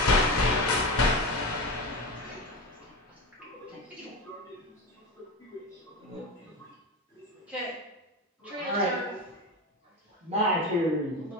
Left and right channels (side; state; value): both; normal; correlation 0.22